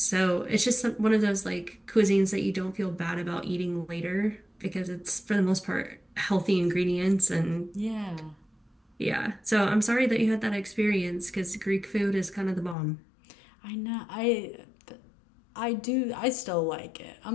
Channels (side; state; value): right; drops out; at 12.8 s